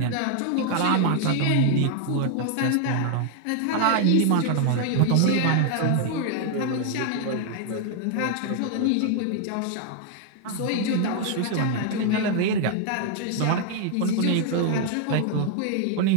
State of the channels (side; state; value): both; different; correlation 0.00